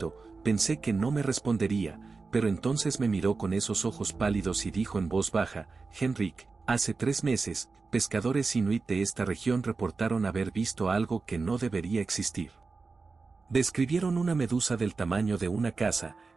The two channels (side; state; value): left; quieter; 4.2 dB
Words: pensé que no me respondería, pero entonces me miró con esos ojos pálidos y dijo en voz baja: Henrik, hace 3 meses, pescadores inuit de esta región reportaron haber visto algo que no debería existir. Describieron una medusa del tamaño de una casa,